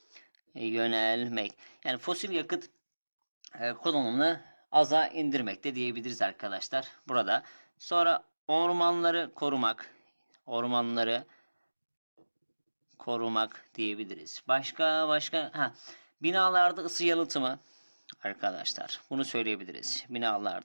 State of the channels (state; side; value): inverted; both; correlation -1.00